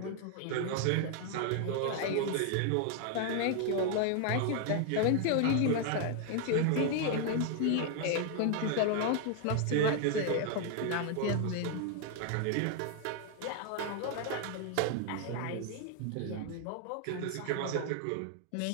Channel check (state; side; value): different; both; correlation 0.00